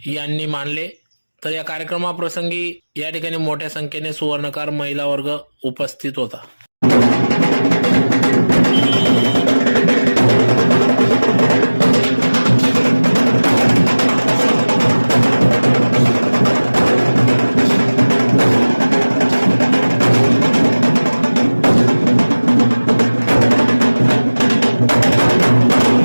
यांनी मानले. तर या कार्यक्रमाप्रसंगी या ठिकाणी मोठ्या संख्येने सुवर्णकार महिला वर्ग उपस्थित होता.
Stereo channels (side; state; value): both; inverted; correlation -1.00